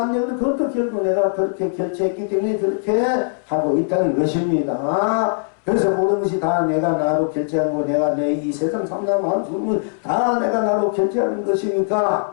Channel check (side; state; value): right; silent; 66 dB below the other